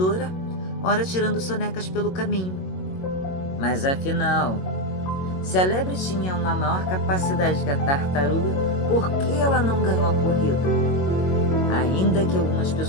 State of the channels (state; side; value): late; right; 22 ms